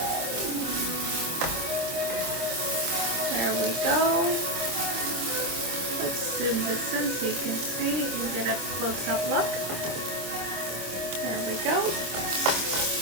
There we go. Let's zoom this in so you can see and get a close-up look. There we go.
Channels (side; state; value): left; late; 25 ms